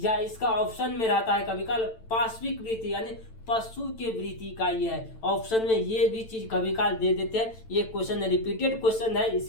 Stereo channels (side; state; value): right; late; 9.0 ms